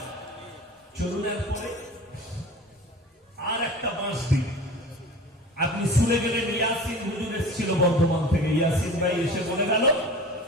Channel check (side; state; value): both; normal; correlation 0.38